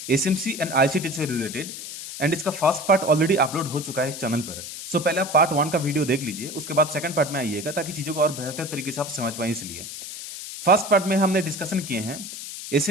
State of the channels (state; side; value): noise; left; hiss, 10 dB below the sound